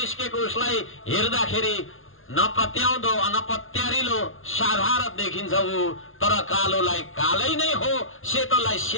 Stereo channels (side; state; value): right; late; 0.59 ms